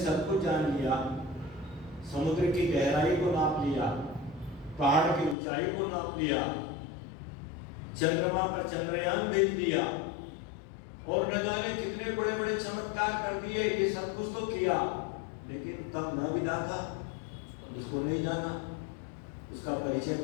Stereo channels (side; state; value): right; drops out; at 5.4 s